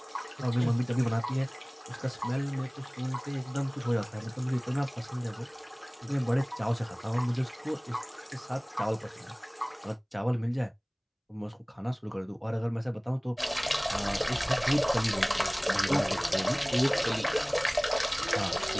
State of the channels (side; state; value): both; identical; correlation 1.00